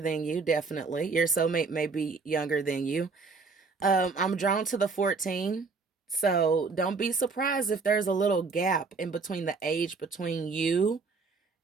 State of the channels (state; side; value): quieter; left; 4.4 dB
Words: you, definitely. Your soulmate may be younger than you. I'm drawn to the 14. So don't be surprised if there's a little gap in between the age between you